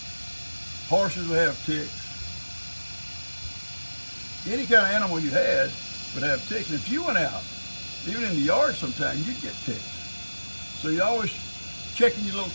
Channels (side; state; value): both; inverted; correlation -1.00